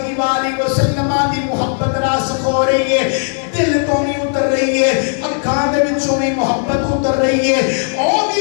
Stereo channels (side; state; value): right; silent; 55 dB below the other